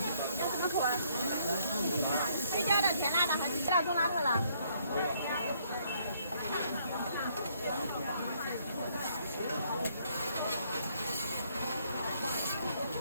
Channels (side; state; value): both; inverted; correlation -0.67